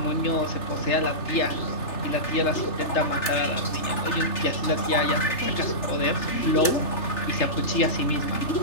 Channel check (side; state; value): right; late; 3.3 ms